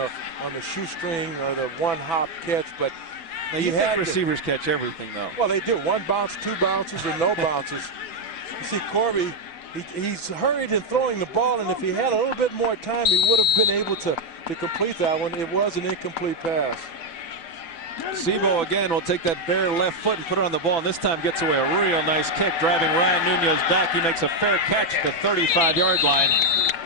shoestring or the one-hop catch, but now you think receivers catch everything, though. Well, they do. 1 bounce, 2 bounces, or no bounces. You see, Corby, he's hurried in throwing the ball, and if he had a little bit more time, he would have been able to complete that one. It was an incomplete pass. Sebo again will take that bare left foot and put it on the ball, and this time gets away a real nice kick, driving Ryan Nunez back. He makes a fair catch at the 35-yard line.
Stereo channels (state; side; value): late; right; 6.0 ms